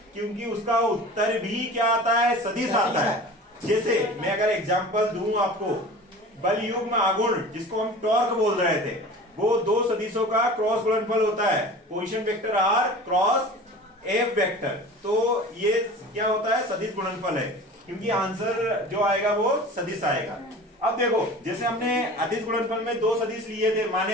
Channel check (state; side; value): normal; both; correlation 0.39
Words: क्योंकि उसका उत्तर भी क्या आता है, सदिश आता है। जैसे मैं अगर एग्जांपल दूं आपको, बल युग्म आघूर्ण जिसको हम टॉर्क बोल रहे थे, वो दो सदिशों का क्रॉस गुणनफल होता है, position vector R cross F vector. तो ये क्या होता है, सदिश गुणनफल है, क्योंकि आंसर जो आएगा वो सदिश आएगा। अब देखो, जैसे हमने अदिश गुणनफल में दो सदिश लिए थे,